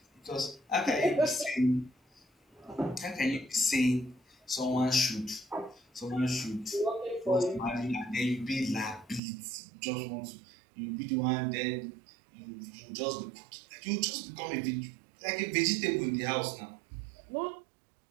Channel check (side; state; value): left; drops out; at 9.2 s